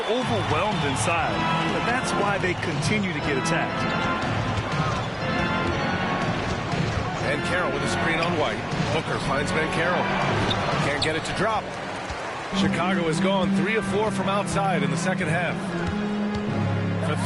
inside. But that's why they continue to get attacked. And Carroll with a screen on White. Booker finds Ben Carroll. Can't get it to drop. Chicago has gone 3 of 4 from outside in the second half. For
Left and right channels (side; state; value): both; identical; correlation 1.00